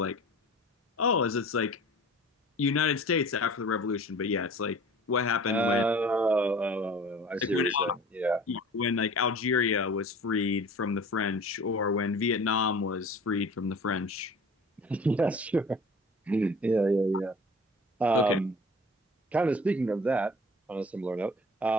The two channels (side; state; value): both; normal; correlation 0.43